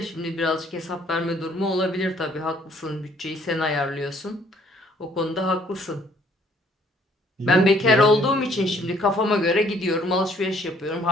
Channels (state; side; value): normal; both; correlation 0.62